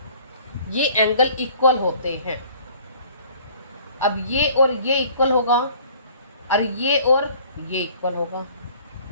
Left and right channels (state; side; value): inverted; both; correlation -0.52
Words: ये एंगल इक्वल होते हैं. अब ये और ये इक्वल होगा और ये इक्वल होगा,